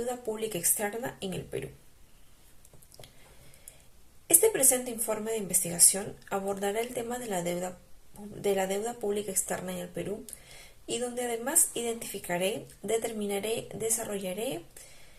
pública externa en el Perú. Este presente informe de investigación abordará el tema de la deuda pública externa en el Perú y donde además identificaré, determinaré, desarrollaré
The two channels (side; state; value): both; identical; correlation 1.00